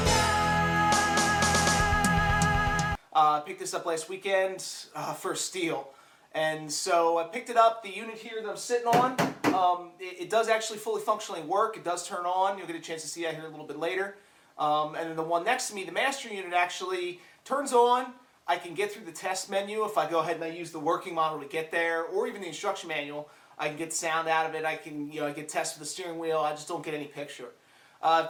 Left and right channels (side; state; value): both; identical; correlation 1.00